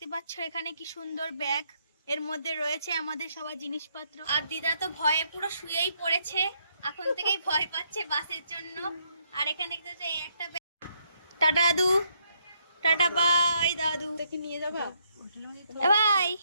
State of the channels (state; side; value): inverted; both; correlation -0.74